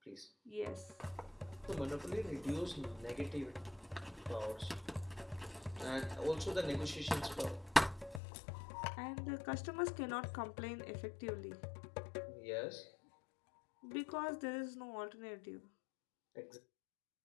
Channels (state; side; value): drops out; right; at 8.2 s